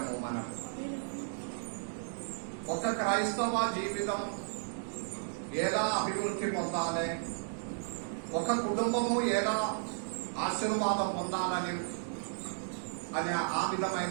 మనం ఒక క్రైస్తవ జీవితం ఎలా అభివృద్ధి పొందాలి, ఒక కుటుంబము ఎలా ఆశీర్వాదం పొందాలని అనే ఆ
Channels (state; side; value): silent; left; digital silence